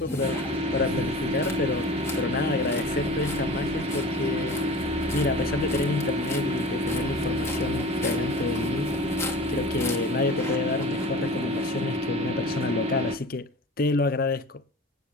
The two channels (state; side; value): normal; both; correlation 0.38